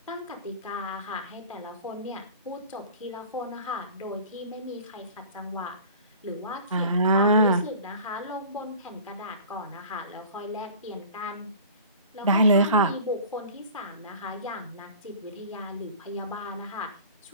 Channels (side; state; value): both; inverted; correlation -0.42